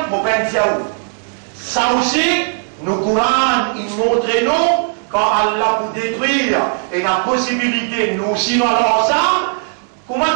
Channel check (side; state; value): left; silent; 58 dB below the other